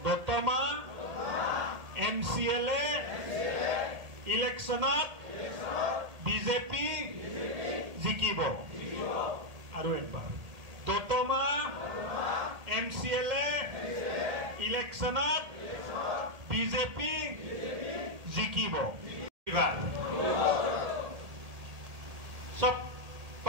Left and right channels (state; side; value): late; left; 1.7 ms